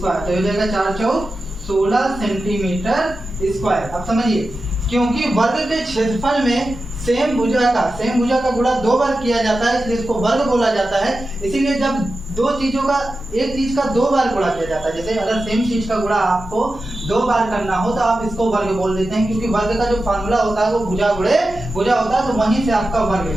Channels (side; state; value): both; normal; correlation 0.92